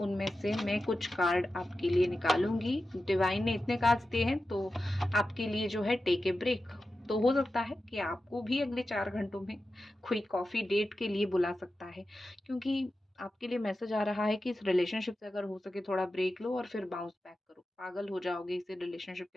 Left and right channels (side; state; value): both; normal; correlation 0.92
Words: से मैं कुछ कार्ड आपके लिए निकालूंगी। डिवाइन ने इतने कार्ड्स दिए हैं तो आपके लिए जो है टेक ए ब्रेक। तो हो सकता है कि आपको भी अगले 4 घंटों में कोई कॉफ़ी डेट के लिए बुला सकता है, क्योंकि आपके लिए मैसेज आ रहा है कि इस रिलेशनशिप से अगर हो सके थोड़ा ब्रेक लो और फिर बाउंस बैक करो। पागल हो जाओगे इसी रिलेशनशिप